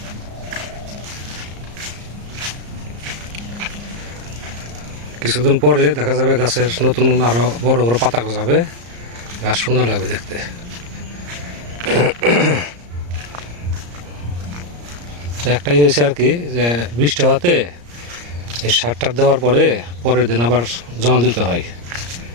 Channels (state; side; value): late; left; 34 ms